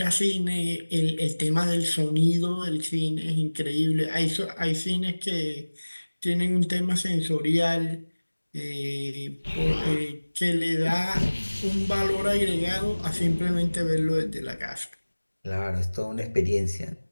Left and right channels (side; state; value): both; inverted; correlation -1.00